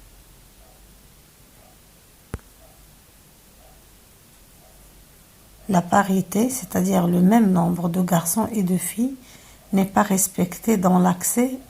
La parité, c'est-à-dire le même nombre de garçons et de filles, n'est pas respecté dans l'accès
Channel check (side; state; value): both; identical; correlation 1.00